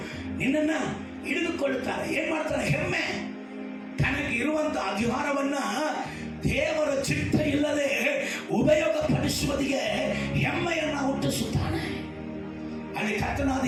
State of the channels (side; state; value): both; identical; correlation 1.00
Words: ನಿನ್ನನ್ನ ಹಿಡಿದುಕೊಳ್ಳುತ್ತಾರೆ. ಏನ್ ಮಾಡ್ತಾರೆ? ಹೆಮ್ಮೆ. ತನಗೆ ಇರುವಂತ ಅಧಿಕಾರವನ್ನ ದೇವರ ಚಿತ್ತ ಇಲ್ಲದೆ ಉಪಯೋಗ ಪಡಿಸುವುದಿಗೆ ಹೆಮ್ಮೆಯನ್ನ ಹುಟ್ಟಿಸುತ್ತಾನೆ. ಅಲ್ಲಿ ಕರ್ತನಾದ